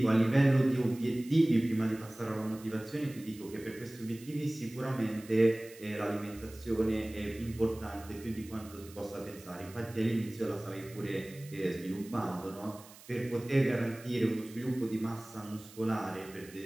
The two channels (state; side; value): noise; right; hiss, 20 dB below the sound